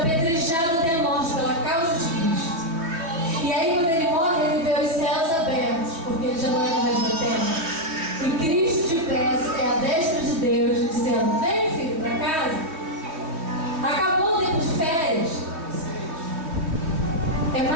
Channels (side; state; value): left; late; 3.1 ms